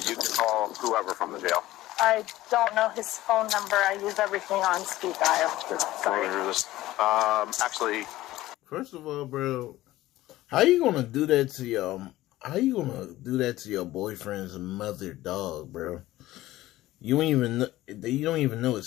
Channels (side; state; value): right; quieter; 16.2 dB